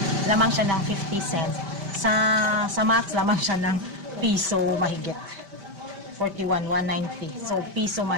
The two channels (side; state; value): left; late; 5.1 ms